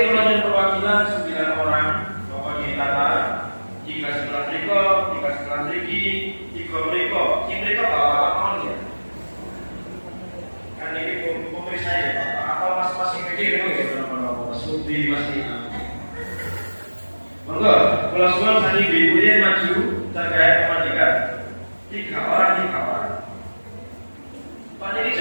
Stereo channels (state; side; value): inverted; both; correlation -1.00